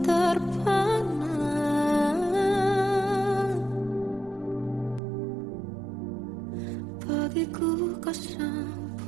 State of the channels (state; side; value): drops out; left; at 5.0 s